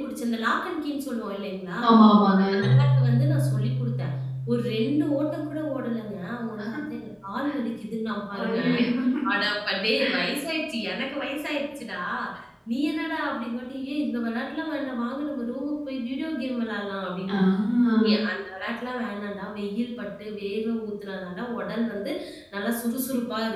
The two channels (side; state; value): both; identical; correlation 1.00